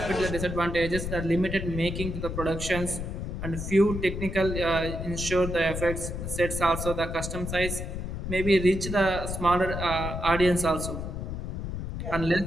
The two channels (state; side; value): noise; left; rumble, 5 dB below the sound